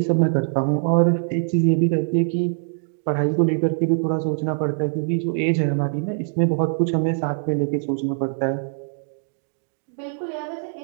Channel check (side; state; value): left; silent; digital silence